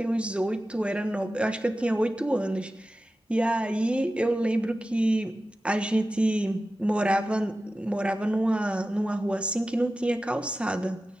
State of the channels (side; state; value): both; normal; correlation 0.94